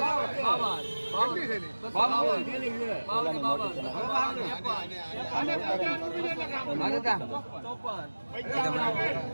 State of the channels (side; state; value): both; inverted; correlation -1.00